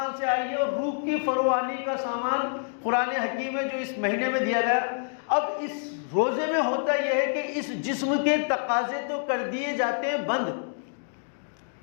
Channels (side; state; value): right; silent; digital silence